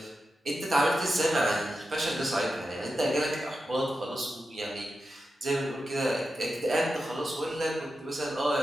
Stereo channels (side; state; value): both; normal; correlation 0.90